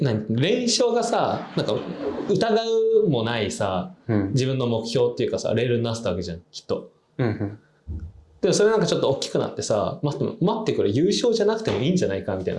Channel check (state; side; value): identical; both; correlation 1.00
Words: 勝がさ、なんか疑うもないさ、自分の目標っていうかさ、レールになってたわけじゃん、きっと。でもそれなんかちょっと大きくなってさ、待ってくれ、優勝じゃなくてもいいんじゃないかみたい